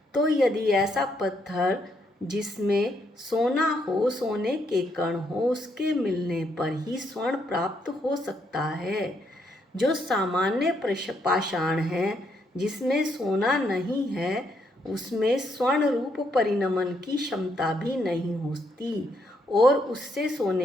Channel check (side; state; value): both; normal; correlation 0.75